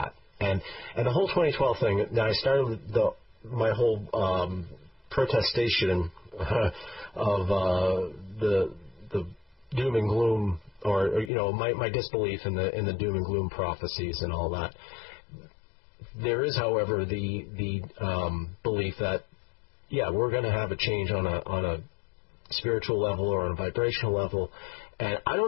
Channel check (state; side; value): drops out; right; at 11.3 s